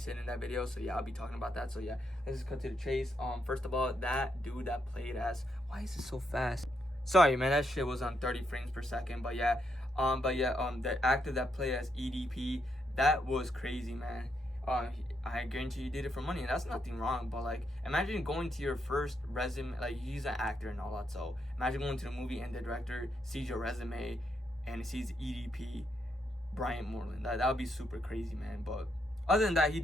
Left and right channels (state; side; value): normal; both; correlation 0.79